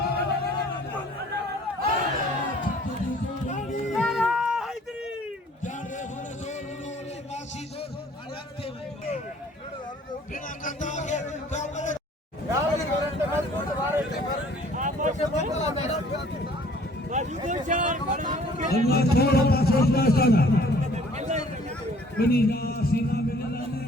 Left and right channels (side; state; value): both; normal; correlation 0.55